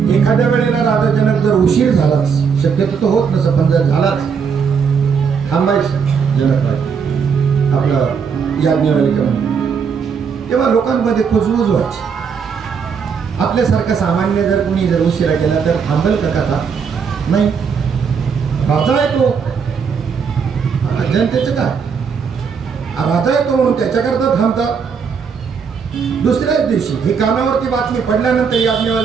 एखाद्या वेळेला राजा जनक जर उशीर झालाच, शक्यतो तो होत नसं, पण जर झालाच, थांबायचं जनक आपलं याज्ञवल्क्य म्हणून. तेव्हा लोकांमध्ये कुजबुज व्हायची. आपल्यासारखा सामान्य जर कुणी जर उशिरा केला तर थांबेल का कथा? नाही. राजा आहे तो, जनतेचं काय, राजा आहे तो म्हणून त्याच्याकरता थांबतात. दुसऱ्याच दिवशी ही कानावरती बातमी पडल्यानंतर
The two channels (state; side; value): quieter; left; 6.3 dB